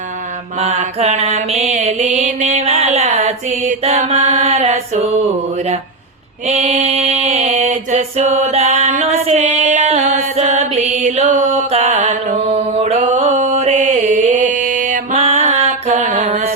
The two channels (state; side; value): quieter; left; 3.2 dB